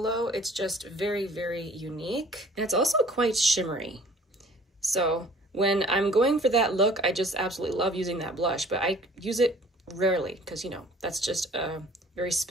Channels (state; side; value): normal; both; correlation 0.52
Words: It's just very unique, and it's also quite shimmery. So when I'm going for that look, I just absolutely love using that blush, but I use it rarely because, you know, that's just a very